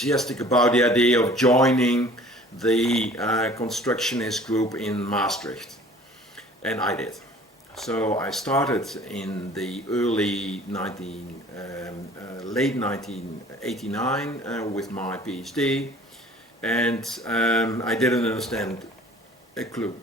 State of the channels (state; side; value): normal; both; correlation 0.50